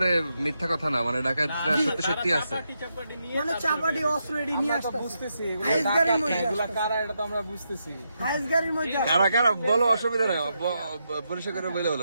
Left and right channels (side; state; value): both; inverted; correlation -0.83